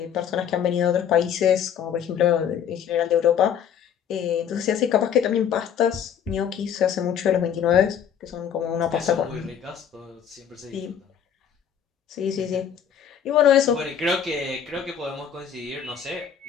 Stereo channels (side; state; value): right; quieter; 8.4 dB